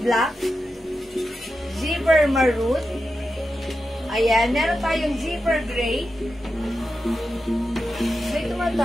Zipper maroon. Ayan, meron tayong zipper gray. May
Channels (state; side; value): normal; both; correlation 0.90